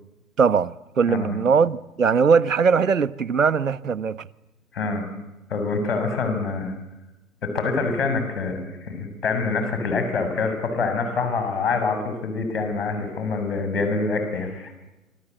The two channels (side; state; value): both; normal; correlation 0.55